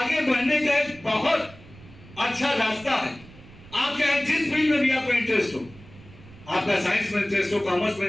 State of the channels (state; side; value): noise; right; rumble, 21 dB below the sound